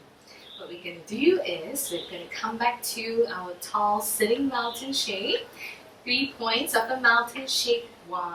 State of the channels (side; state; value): both; identical; correlation 1.00